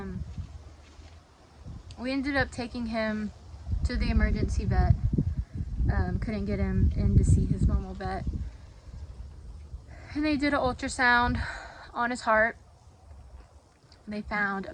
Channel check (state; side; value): identical; both; correlation 1.00